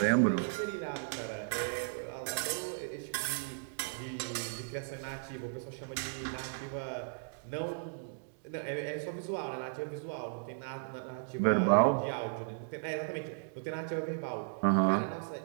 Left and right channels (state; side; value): silent; left; digital silence